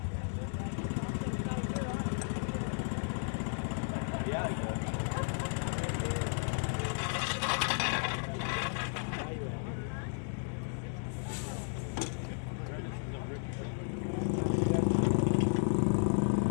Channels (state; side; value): silent; right; 55 dB below the other